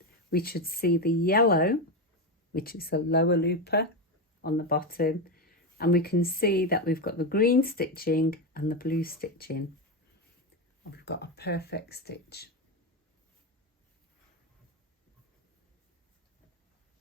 We should see the yellow, which is the lower looper on the bottom. And we can see that we've got the green stitching and the blue stitching. We've got a perfect stitch.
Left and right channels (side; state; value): both; normal; correlation 0.12